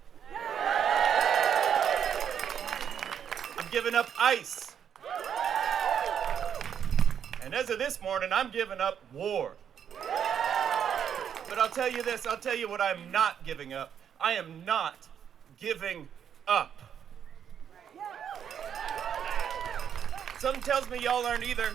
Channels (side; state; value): left; quieter; 8.4 dB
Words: I'm giving up ICE. And as of this morning, I'm giving up war. But I'll tell you this, I'll tell you what I'm not giving up. I am not giving up. Something tells me y'all aren't either.